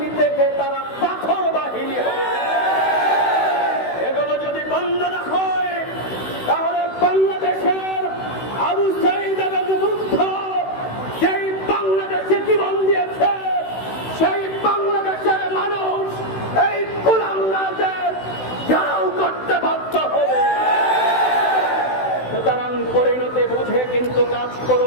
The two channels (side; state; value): right; late; 16 ms